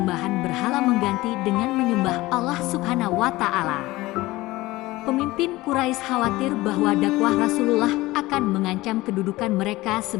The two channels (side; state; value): right; quieter; 19.1 dB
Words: berhala mengganti dengan menyembah Allah Subhanahu wa Ta'ala. Pemimpin Quraisy khawatir bahwa dakwah Rasulullah akan mengancam kedudukan mereka